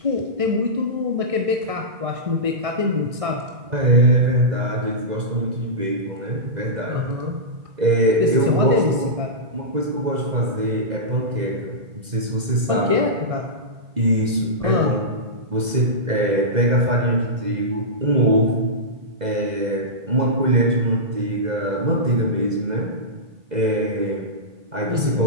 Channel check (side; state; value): left; late; 2.0 ms